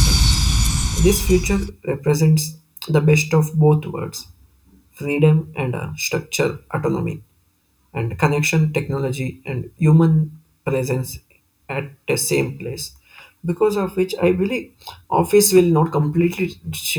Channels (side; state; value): both; identical; correlation 1.00